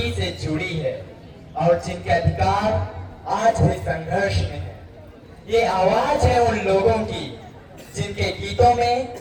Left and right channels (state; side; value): identical; both; correlation 1.00